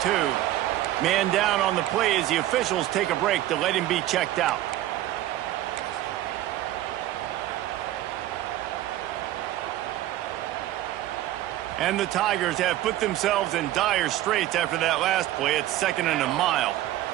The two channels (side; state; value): left; quieter; 14.3 dB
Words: Man down on the play as the officials take a break to let him be checked out. And the Tigers have put themselves in dire straits after that last play. It's 2nd and a mile.